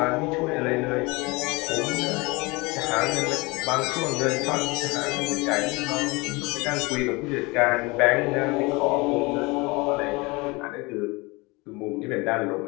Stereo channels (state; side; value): quieter; right; 25.2 dB